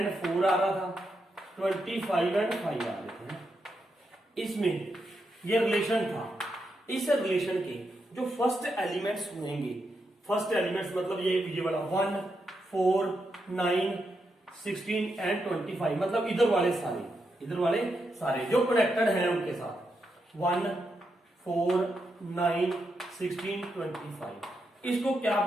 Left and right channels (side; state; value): both; normal; correlation 0.84